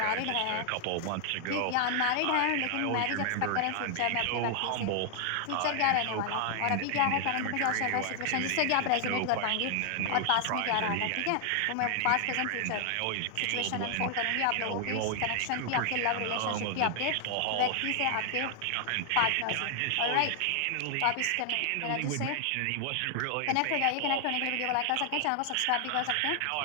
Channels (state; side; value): different; both; correlation 0.00